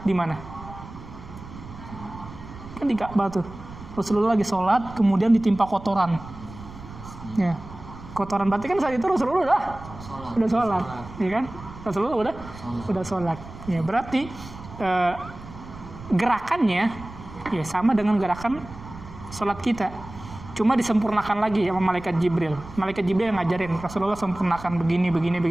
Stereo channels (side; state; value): right; noise; rumble, 15 dB below the sound